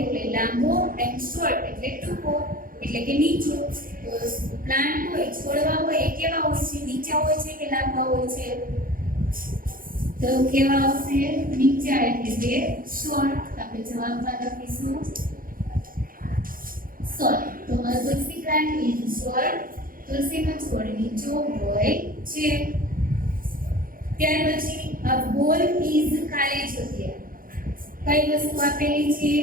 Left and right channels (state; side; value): late; left; 0.41 ms